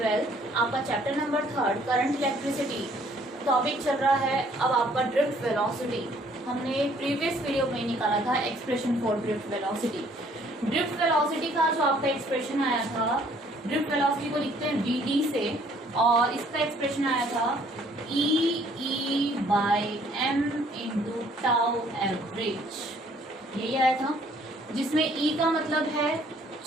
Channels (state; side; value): normal; both; correlation 0.61